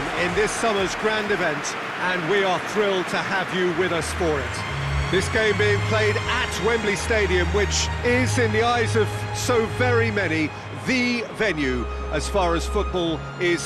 in this summer's grand event, and we are thrilled to have you with us for it. This game being played at Wembley Stadium, which is, in the eyes of so very many, the venue as far as football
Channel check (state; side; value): identical; both; correlation 1.00